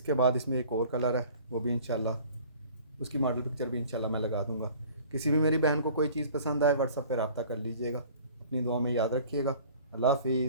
बाद इसमें एक और कलर है, वो भी इंशाल्लाह उसकी मॉडल पिक्चर भी इंशाल्लाह मैं लगा दूंगा। किसी भी मेरी बहन को कोई चीज़ पसंद आए व्हाट्सएप पर रब्ता कर लीजिएगा। अपनी दुआ में याद रखिएगा। अल्लाह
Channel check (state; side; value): inverted; both; correlation -0.49